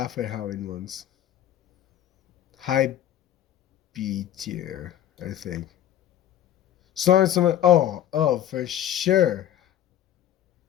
Halloween ones. High B tier, I think. Sorry, someone. Oh, for sure.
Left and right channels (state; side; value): quieter; right; 11.2 dB